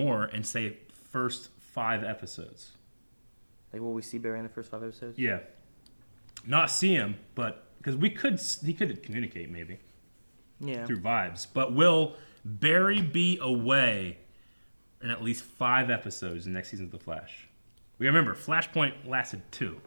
and say first 5 episodes. Like, will we see Barry in the first 5 episodes? Yeah. Not see him, but because he could communicate maybe Yeah. through vibes. But will Barry be away in at least 5 episodes in the next season of The Flash? We remember Flashpoint lasted 2.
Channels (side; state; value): both; inverted; correlation -1.00